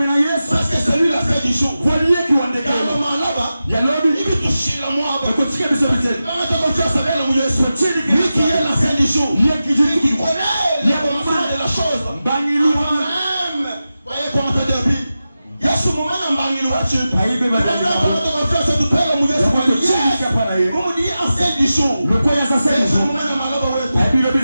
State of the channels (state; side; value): inverted; both; correlation -0.93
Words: Parce que c'est lui la fin du jour. Car le moment là-bas, il veut toucher la moi. Lui qui est la fin du jour. Lui qui connaît le commencement de la chose. Voyez comment ça dit. Il y a ce moment dans Bangi Louachi. On me dit en fin du jour.